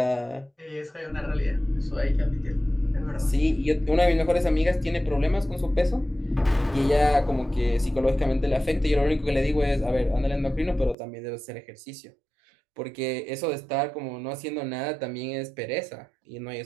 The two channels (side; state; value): left; drops out; at 11.0 s